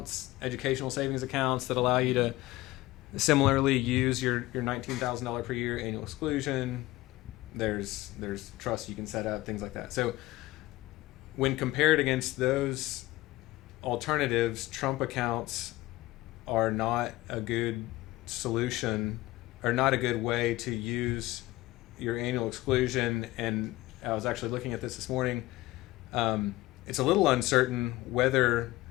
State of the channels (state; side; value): quieter; right; 18.3 dB